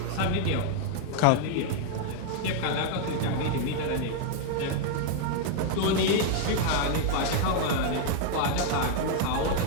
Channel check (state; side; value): different; both; correlation 0.00